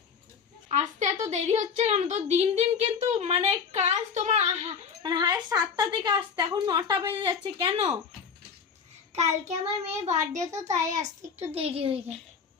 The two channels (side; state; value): right; quieter; 6.3 dB